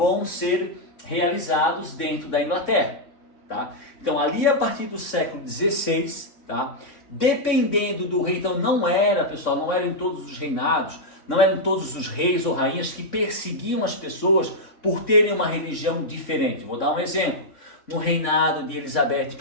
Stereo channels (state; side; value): late; right; 3.5 ms